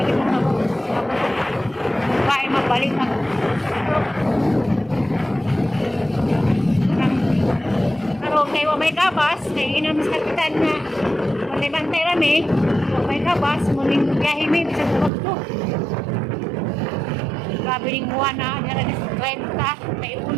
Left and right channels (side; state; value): left; drops out; at 15.1 s